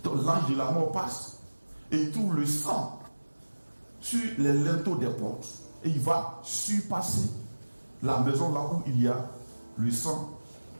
Donc l'ange de la mort passe et il trouve le sang sur les linteaux des portes et il va surpasser la maison là où il y a le sang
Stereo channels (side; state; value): both; inverted; correlation -1.00